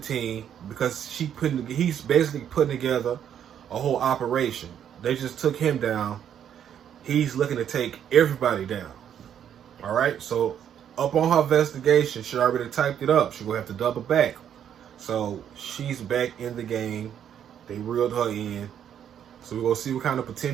because he's basically putting together a whole operation. They just took him down. He's looking to take everybody down. All right, so up on her investigation, she already typed it up. She gonna have to double back. So she's back in the game. They reeled her in. So we're gonna see what kind of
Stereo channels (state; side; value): quieter; left; 9.3 dB